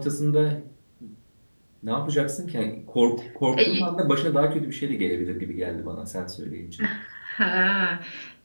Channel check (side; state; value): both; inverted; correlation -1.00